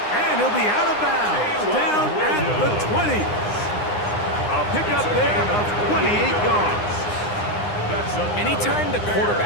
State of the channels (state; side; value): late; right; 9.8 ms